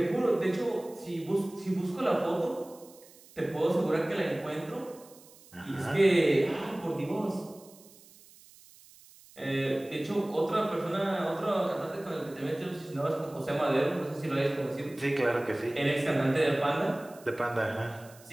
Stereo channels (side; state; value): right; noise; hiss, 24 dB below the sound